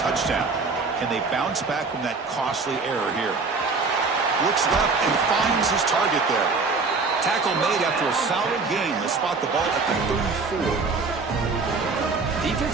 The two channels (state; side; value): quieter; left; 4.3 dB